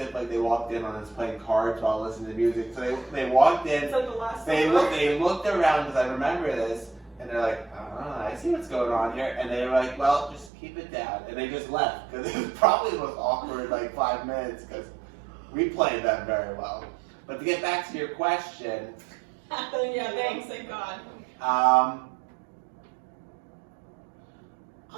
like they walked in on us playing cards while listening to music. So they walked in. It's like the last. They looked around because I remember this, and they're like, I see what's going on here, and they were like, well, just keep it down, and they just left because it was probably the most awkward like 5 minutes because we played them very well. But to get back to your question, Yeah, thanks, thank God.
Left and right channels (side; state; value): left; drops out; at 10.5 s